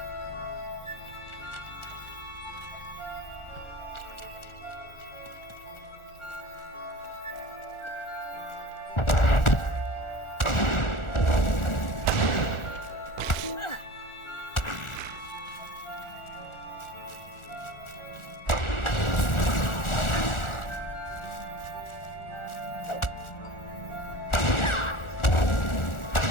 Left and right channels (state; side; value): late; right; 1.4 ms